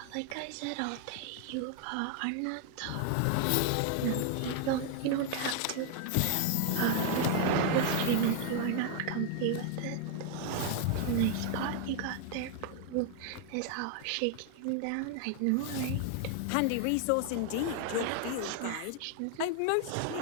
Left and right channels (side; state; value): both; different; correlation 0.00